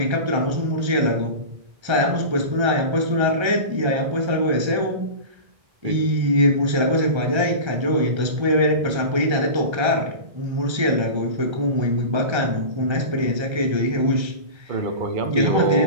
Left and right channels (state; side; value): late; left; 1.3 ms